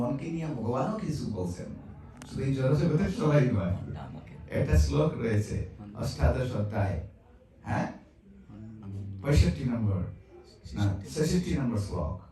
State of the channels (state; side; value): identical; both; correlation 1.00